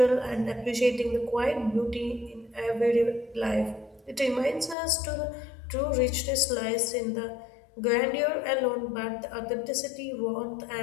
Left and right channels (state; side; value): drops out; right; at 4.8 s